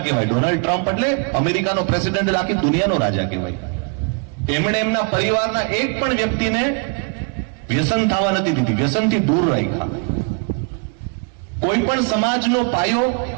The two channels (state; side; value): quieter; left; 37.2 dB